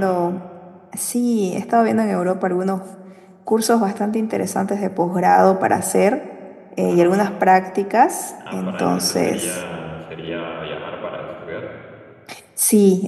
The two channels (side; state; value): both; identical; correlation 1.00